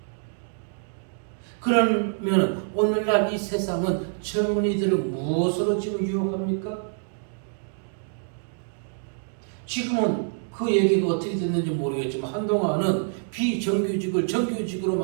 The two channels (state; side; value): silent; left; digital silence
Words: 그러면 오늘날 이 세상은 젊은이들을 무엇으로 지금 유혹합니까? 지금은 그 얘기가 어떻게 됐는지 모르겠지만 한동안은 비정규직을 정규직으로